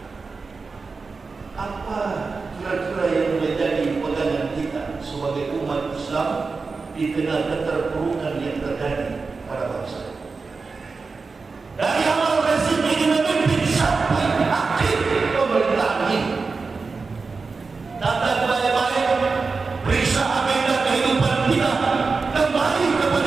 apa kira-kira yang menjadi pegangan kita sebagai umat Islam di tengah keterpurukan yang terjadi pada bangsa. Dari awal rezim ini memimpin sampai akhir pemerintahan ini. Tata baik-baik, periksa agenda kehidupan kita, kembali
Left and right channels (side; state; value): left; quieter; 4.4 dB